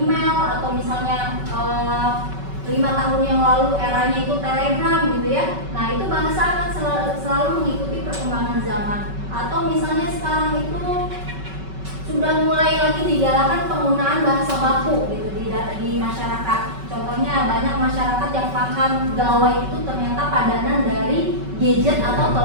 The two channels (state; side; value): late; left; 5.3 ms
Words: atau misalnya 5 tahun yang lalu eranya itu Telegram gitu ya. Nah itu bahasa akan selalu mengikuti perkembangan zaman. Atau misalnya sekarang itu sudah mulai lagi digalakan penggunaan bahasa baku gitu di di masyarakat. Contohnya banyak masyarakat yang paham gawai itu ternyata padanan dari gadget atau